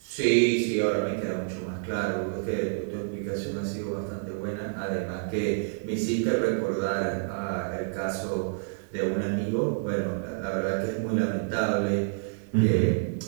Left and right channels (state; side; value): silent; left; digital silence